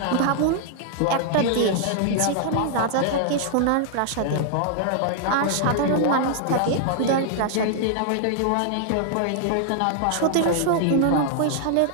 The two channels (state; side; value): different; both; correlation -0.01